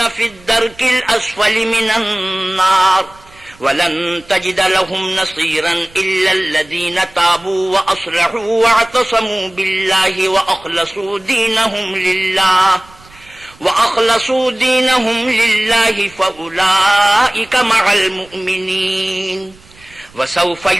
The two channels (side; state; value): right; noise; rumble, 26 dB below the sound